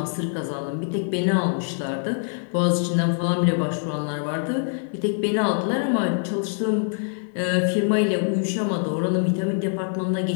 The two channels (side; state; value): right; silent; 57 dB below the other